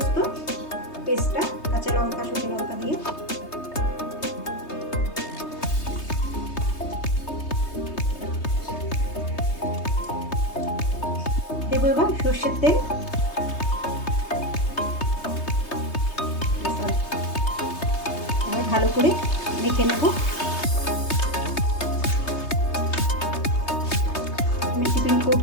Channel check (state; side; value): late; right; 3.2 ms